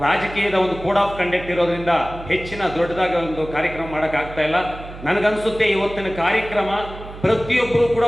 ರಾಜಕೀಯದ ಒಂದು ಕೋಡ್ ಆಫ್ ಕಂಡಕ್ಟ್ ಇರೋದ್ರಿಂದ ಹೆಚ್ಚಿನ ದೊಡ್ಡದಾಗಿ ಒಂದು ಕಾರ್ಯಕ್ರಮ ಮಾಡೋಕ್ಕಾಗ್ತಾ ಇಲ್ಲ. ನನಗನ್ಸುತ್ತೆ ಇವತ್ತಿನ ಕಾರ್ಯಕ್ರಮ ಪ್ರತಿಯೊಬ್ಬರು ಕೂಡ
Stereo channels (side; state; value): right; noise; hum, 14 dB below the sound